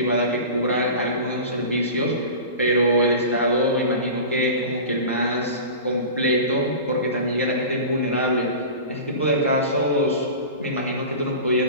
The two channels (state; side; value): inverted; both; correlation -0.34